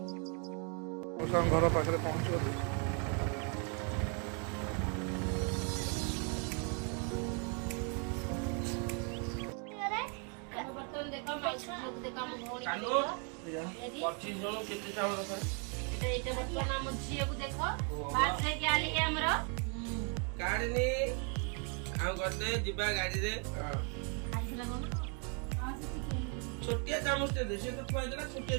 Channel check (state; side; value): quieter; left; 38.1 dB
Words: ମଉସାଙ୍କ ଘର ପାଖରେ ପହଞ୍ଚିଗଲୁ। छोटिया चामच दे से तो फायदा छोटिया